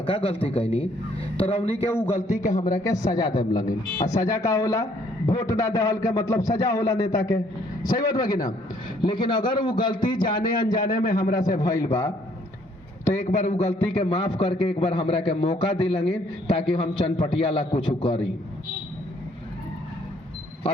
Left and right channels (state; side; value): normal; both; correlation 0.64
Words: गलती कैनी, तो रौनी के वो गलती के हमरा के सजा देम लगे। आ सजा का होला, वोट ना देहल के मतलब सजा होला नेता के, सही बात बा कि ना। लेकिन अगर वो गलती जाने अनजाने में हमरा से भइल बा तो एक बार वो गलती के माफ करके एक बार हमरा के मौका दी लगे, ताकि हम चनपटिया ला कुछ करी।